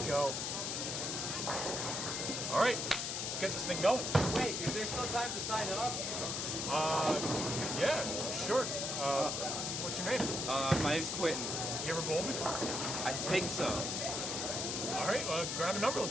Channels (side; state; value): left; noise; hiss, 2 dB below the sound